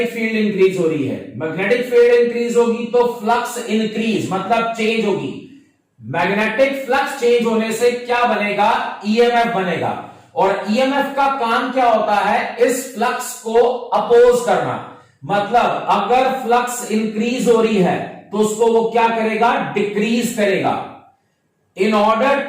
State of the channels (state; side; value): identical; both; correlation 1.00